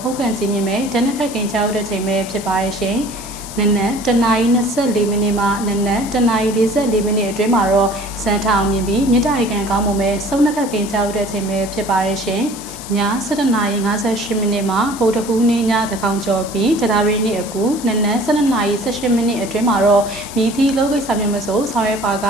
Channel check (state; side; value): noise; left; hiss, 13 dB below the sound